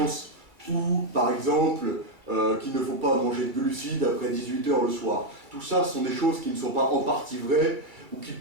ou par exemple qu'il ne faut pas manger de glucides après 18 h le soir. Tout ça sont des choses qui ne sont pas en partie vraies, ou qui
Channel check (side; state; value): left; late; 2.3 ms